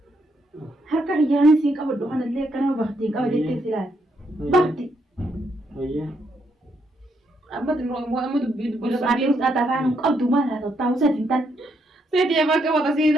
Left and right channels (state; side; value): normal; both; correlation 0.76